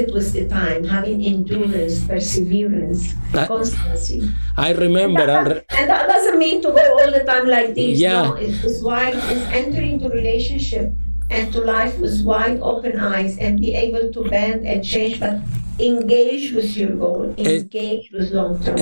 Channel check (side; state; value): both; inverted; correlation -1.00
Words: with the time, having endurance, perseverance, constancy. I remember. And that doesn't mean to go all the time like this. Yeah. No, it's entering into relationship and to life with wide open eyes, and be able to bend and change, but engage with your goal, engage with long-term